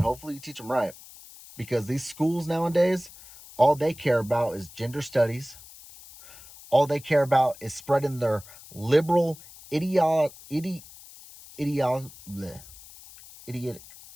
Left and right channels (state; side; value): noise; left; hiss, 19 dB below the sound